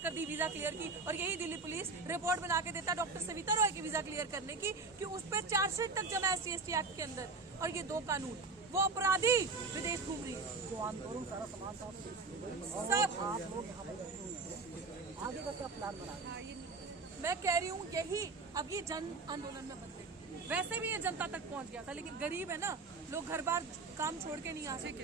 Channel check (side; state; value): left; quieter; 3.9 dB